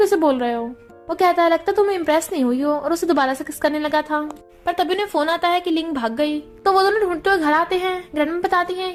बोल रहे हो। वो कहता है लगता तुम इम्प्रेस नहीं हुई हो, और उसे दोबारा से किस करने लगा था। पर तभी उन्हें फोन आता है कि लिंग भाग गई। तो वो दोनों ढूंढते हुए घर आते हैं। ग्रैंडमा बताती हैं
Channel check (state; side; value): identical; both; correlation 1.00